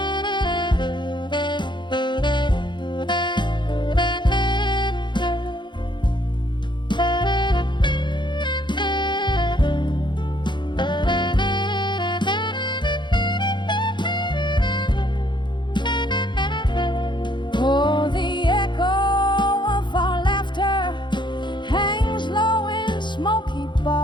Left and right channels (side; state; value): right; late; 0.22 ms